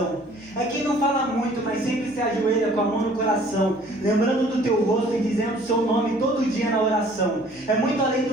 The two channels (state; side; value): normal; both; correlation 0.54